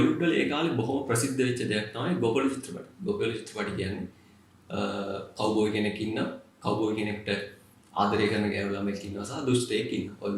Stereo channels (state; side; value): identical; both; correlation 1.00